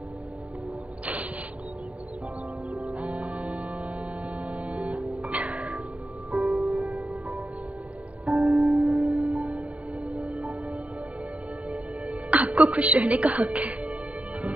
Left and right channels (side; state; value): left; late; 0.065 ms